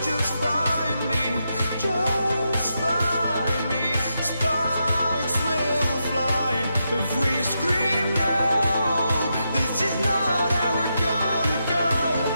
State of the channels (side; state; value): both; inverted; correlation -0.84